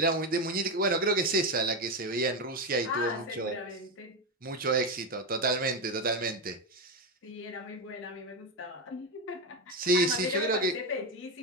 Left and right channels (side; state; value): both; normal; correlation 0.11